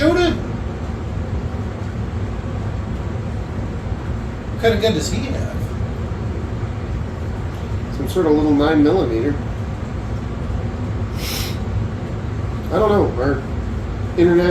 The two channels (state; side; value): identical; both; correlation 1.00